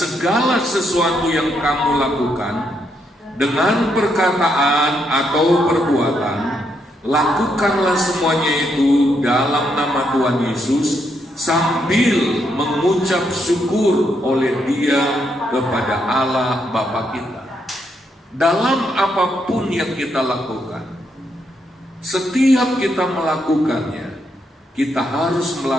sesuatu yang kamu lakukan, dengan perkataan atau perbuatan, lakukanlah semuanya itu dalam nama Tuhan Yesus, sambil mengucap syukur oleh Dia kepada Allah Bapa kita. Dalam apapun yang kita lakukan, setiap kita melakukannya, kita harus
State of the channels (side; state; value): both; normal; correlation 0.77